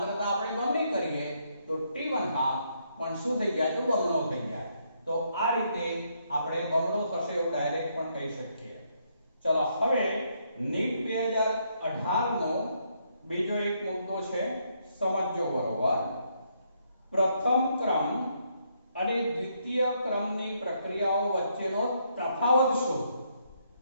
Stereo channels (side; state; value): both; inverted; correlation -0.74